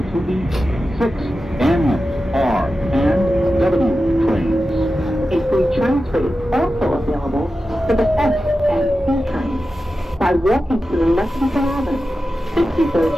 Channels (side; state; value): both; normal; correlation 0.92